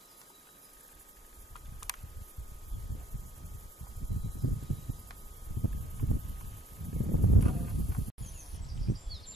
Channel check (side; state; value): both; normal; correlation 0.61